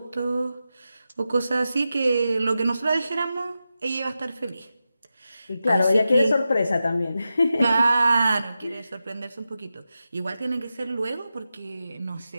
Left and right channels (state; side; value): inverted; both; correlation -0.91